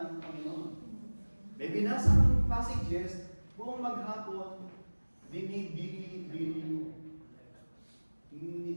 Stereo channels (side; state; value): both; inverted; correlation -1.00